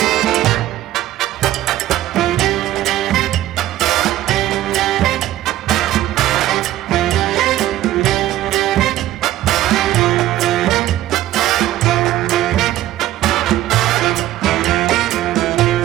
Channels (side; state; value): left; quieter; 14.1 dB